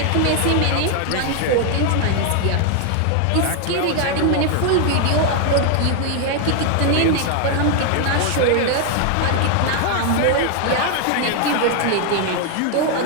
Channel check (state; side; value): different; both; correlation 0.00